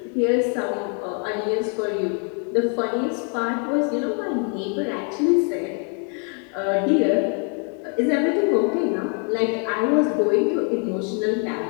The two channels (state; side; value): quieter; right; 38.3 dB